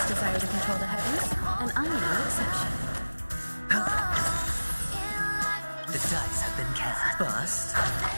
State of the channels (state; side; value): inverted; both; correlation -1.00